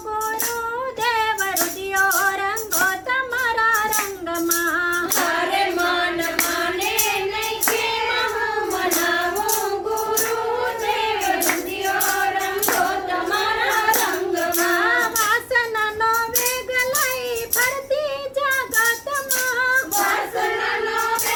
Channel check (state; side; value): identical; both; correlation 1.00